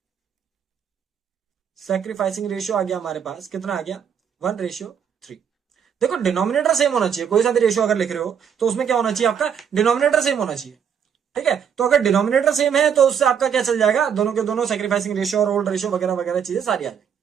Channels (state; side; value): quieter; left; 7.8 dB